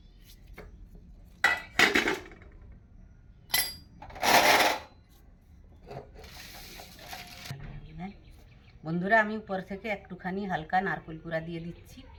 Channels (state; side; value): identical; both; correlation 1.00